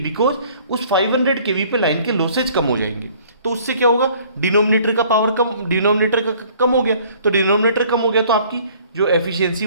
उस 500 केवी पे लाइन के लॉसेज कम हो जाएंगे। तो उससे क्या होगा, डिनोमिनेटर का पावर कम, डिनोमिनेटर का कम हो गया, तो डिनोमिनेटर कम हो गया तो आपकी जो एफिशिएंसी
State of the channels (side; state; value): both; inverted; correlation -0.55